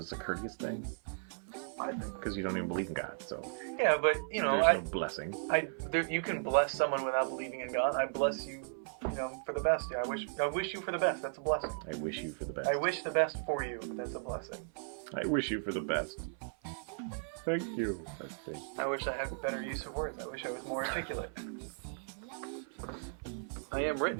a courteous thing? Because you don't even believe in God, so. Yeah, but you know, there's no blessing. You can bless someone without believing in God. I bless you, for the best. Yeah, I wish you for the best. That's a blessing. I wish you for the best. I wish the best for you. That's a blessing. I wish you for the best. Thank you. I wish I had better use of words. I wish I was more articulate. I am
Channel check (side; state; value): left; silent; 54 dB below the other